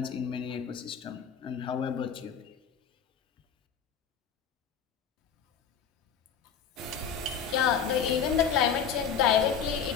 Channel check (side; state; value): right; quieter; 7.2 dB